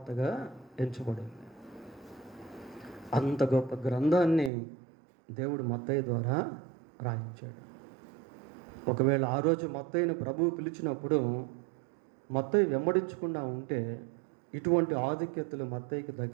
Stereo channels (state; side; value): drops out; left; at 4.5 s